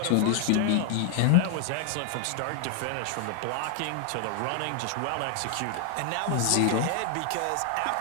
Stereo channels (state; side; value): different; both; correlation 0.00